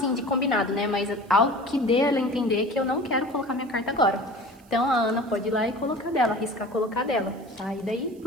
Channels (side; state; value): right; noise; hiss, 29 dB below the sound